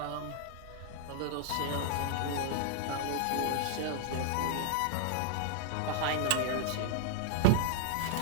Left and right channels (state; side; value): different; both; correlation -0.01